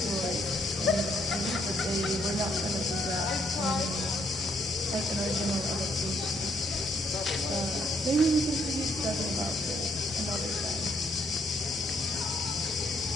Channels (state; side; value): normal; both; correlation 0.70